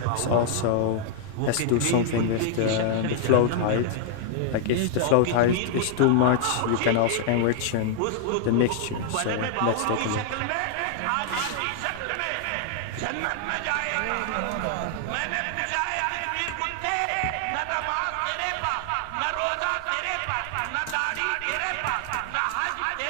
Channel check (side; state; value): both; different; correlation 0.00